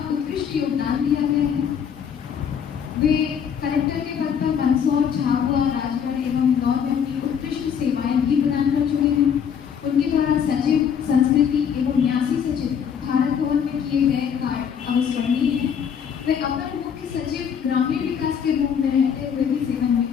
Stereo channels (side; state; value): right; quieter; 7.7 dB